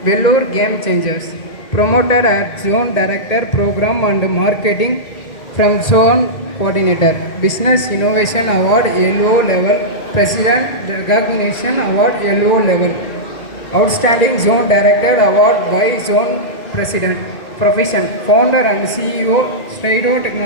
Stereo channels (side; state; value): right; late; 1.9 ms